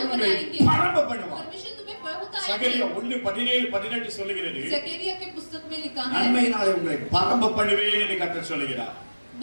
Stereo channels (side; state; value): both; inverted; correlation -1.00